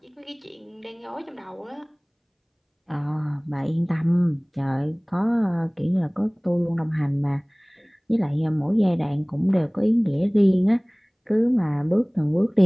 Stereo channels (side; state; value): both; identical; correlation 1.00